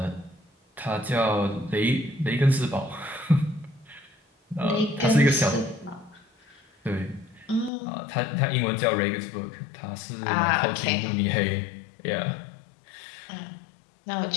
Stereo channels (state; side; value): drops out; right; at 7.7 s